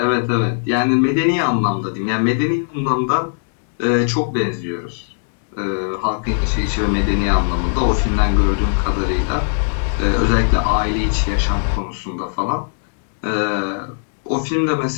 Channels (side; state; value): right; silent; digital silence